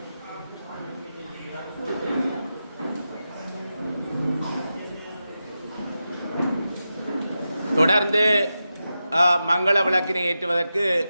தொடர்ந்து மங்கள விளக்கினை ஏற்றுவதற்கு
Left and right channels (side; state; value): both; inverted; correlation -0.91